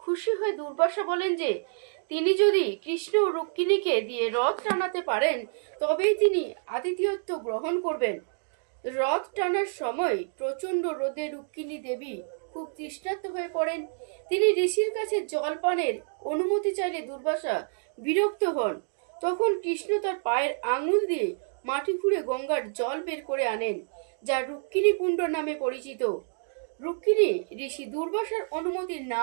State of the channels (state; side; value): silent; left; digital silence